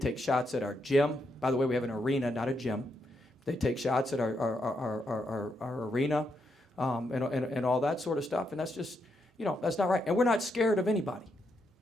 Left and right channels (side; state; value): both; normal; correlation 0.80